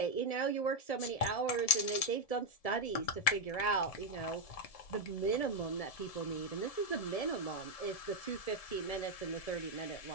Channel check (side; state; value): right; late; 1.7 ms